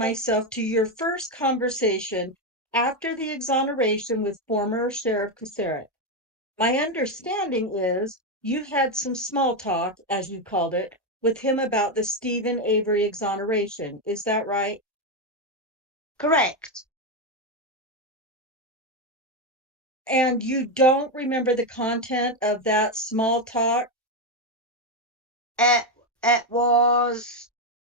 to your first conversation after the exoneration with former Sheriff Kuceric. My understanding is you had some small talk, as you called it, with him about the Stephen Avery exoneration. Is that right? Correct. And you don't remember the content of that small talk? It was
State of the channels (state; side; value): normal; both; correlation 0.07